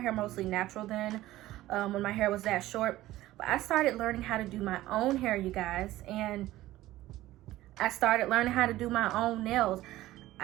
mostly natural then, when my hair was that short. But I started learning how to do my own hair, you guys. And I started learning how to do my own nails.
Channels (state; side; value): quieter; left; 16.0 dB